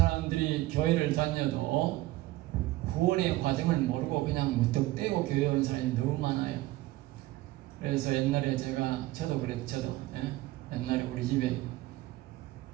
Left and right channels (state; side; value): quieter; left; 17.6 dB